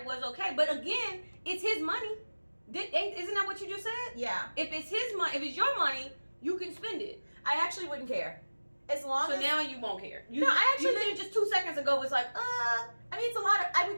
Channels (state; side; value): inverted; both; correlation -1.00